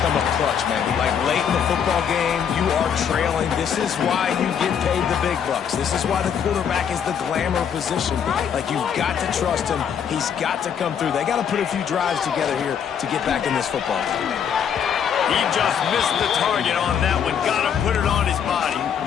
come up clutch, man. Like, late in the football game, you are trailing. This is why you get paid the big bucks. This is why the quarterback is the glamour position. Like, you've got to trust him. He's got to come through. They got to put a few drives together here to get back in this football game. He just missed the target on that one. Got to put it on his body.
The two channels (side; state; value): right; quieter; 7.9 dB